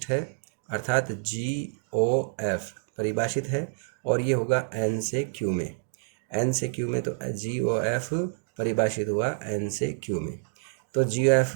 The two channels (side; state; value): left; silent; digital silence